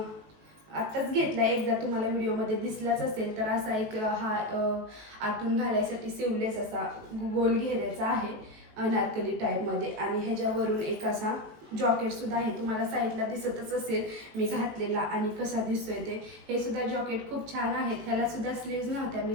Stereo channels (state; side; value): late; left; 18 ms